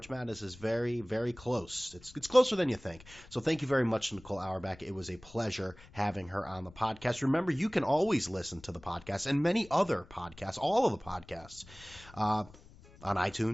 Madness is very, very close. It's closer than you think. So thank you very much, Nicole Auerbach. It was a pleasure having her on the podcast. Remember, you can always listen to the podcast and many other podcasts, all of the podcasts, on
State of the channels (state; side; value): noise; left; rumble, 22 dB below the sound